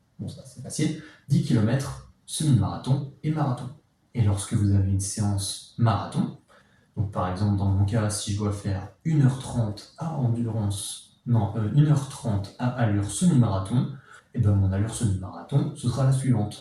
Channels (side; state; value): both; identical; correlation 1.00